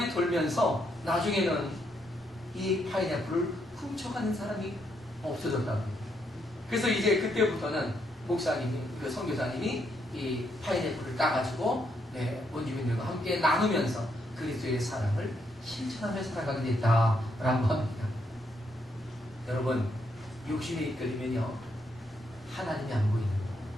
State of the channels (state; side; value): normal; both; correlation 0.76